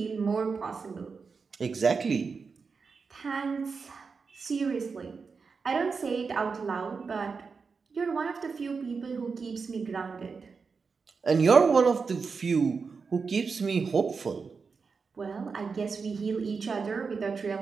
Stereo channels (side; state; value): left; quieter; 5.1 dB